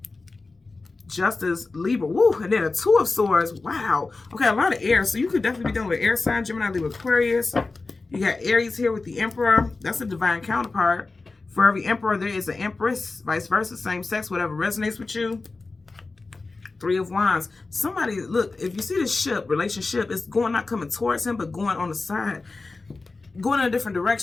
Justice, Libra, woo, and then a 2 of Swords. Wow. Okay, a lot of air. So you could definitely be dealing with air sign, Gemini, Libra, Aquarius. You got Aries here with the Emperor. That's a divine counterpart. For every Emperor, there is an Empress. Vice versa, same sex, whatever resonates with you. 3 of Wands. Somebody, look, if you see this ship, relationship, it's going, not coming towards him, but going on the side. going in a different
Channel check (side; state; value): right; quieter; 3.7 dB